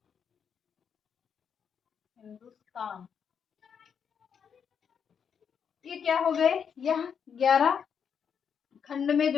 हिंदुस्तान। ये क्या हो गए? यह 11 खंड में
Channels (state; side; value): quieter; right; 7.2 dB